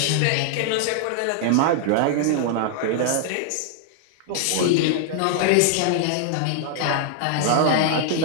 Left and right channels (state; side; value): different; both; correlation -0.01